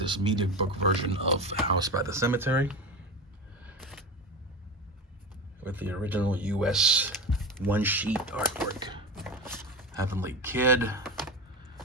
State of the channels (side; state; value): both; normal; correlation 0.24